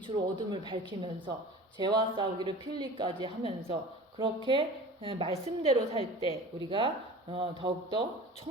어둠을 밝히면서 죄와 싸우기를 필리까지 하면서 그렇게 말씀대로 살 때 우리가 더욱더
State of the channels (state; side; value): normal; both; correlation 0.39